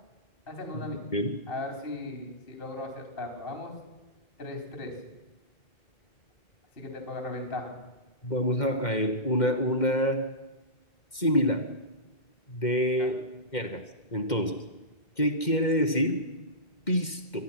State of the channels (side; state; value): right; late; 2.1 ms